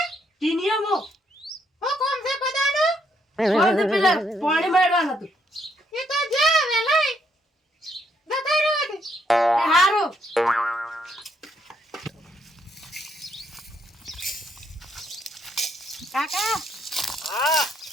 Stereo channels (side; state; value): both; normal; correlation 0.73